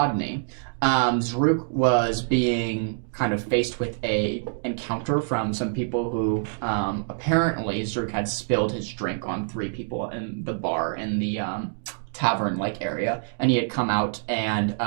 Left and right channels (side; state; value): left; silent; digital silence